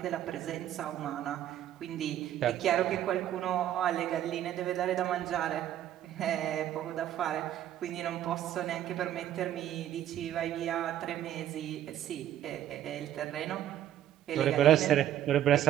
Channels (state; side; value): quieter; left; 11.7 dB